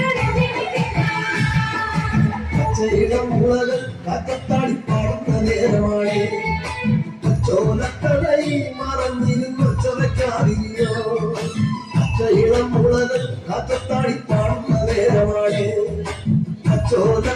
പച്ചയിളം മുളകൾ കാറ്റത്താടി പാടുന്ന നേരമാണ് ചോലക്കടയിൽ മറഞ്ഞിരുന്നൊച്ചവയ്ക്കാറിയോ പച്ചയിളം മുളകൾ കാറ്റത്താടി പാടുന്ന നേരമാണ്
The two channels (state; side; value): identical; both; correlation 1.00